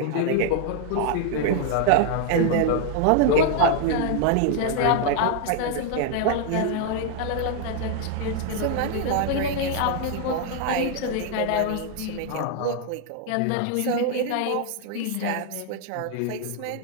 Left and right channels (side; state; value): both; different; correlation 0.00